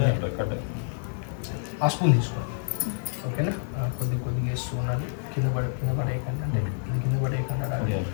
ఆ స్పూన్ తీసుకోండి ఓకేనా కొద్దిగా వేస్తూ ఉండాలి కింద పడేయకండి అంటే కింద పడేయకండి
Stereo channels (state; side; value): silent; right; digital silence